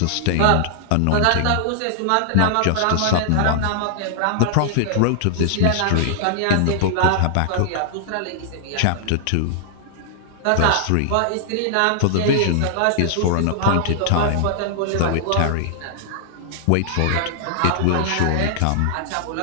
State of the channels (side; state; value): both; different; correlation -0.01